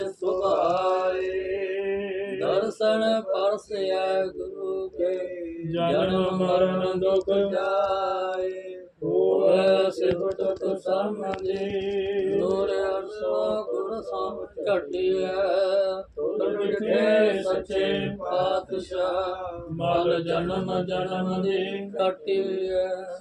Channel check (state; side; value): identical; both; correlation 1.00